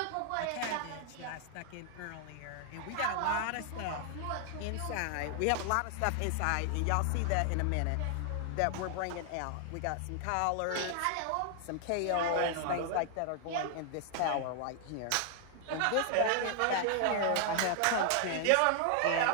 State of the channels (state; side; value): different; both; correlation 0.00